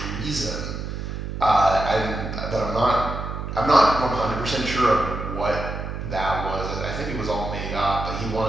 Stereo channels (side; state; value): right; noise; hum, 6 dB below the sound